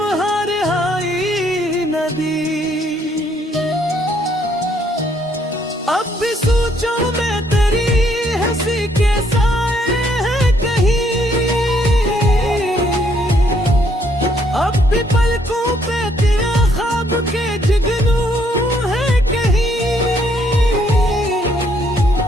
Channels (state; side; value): normal; both; correlation 0.68